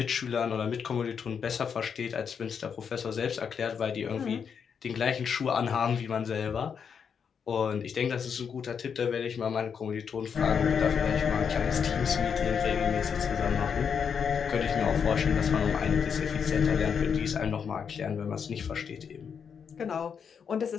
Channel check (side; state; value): right; quieter; 6.8 dB